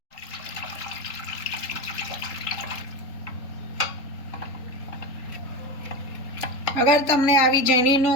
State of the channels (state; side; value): late; right; 3.9 ms